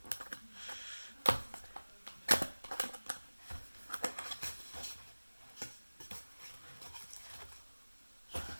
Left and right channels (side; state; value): both; inverted; correlation -1.00